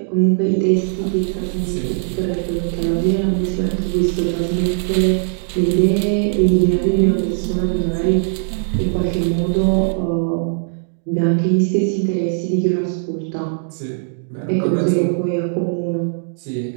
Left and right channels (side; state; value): left; silent; digital silence